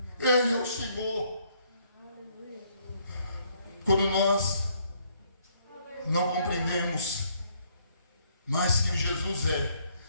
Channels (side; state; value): both; inverted; correlation -0.68